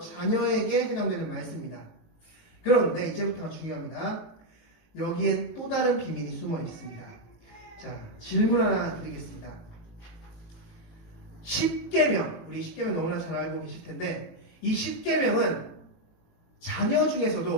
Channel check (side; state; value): right; late; 19 ms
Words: 해당되는 말씀입니다. 그런데 이제부터가 중요합니다. 여기엔 또 다른 비밀이 숨어 있습니다. 자, 질문 하나 드리겠습니다. 10계명, 우리 10계명 너무나 잘 알고 계실 텐데 이 10계명은 자녀